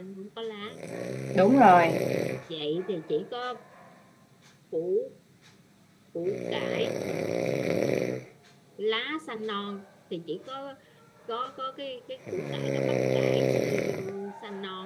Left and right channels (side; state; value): both; identical; correlation 1.00